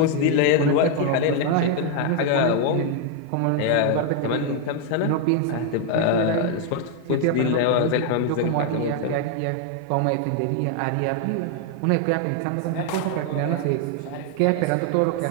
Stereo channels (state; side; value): different; both; correlation 0.00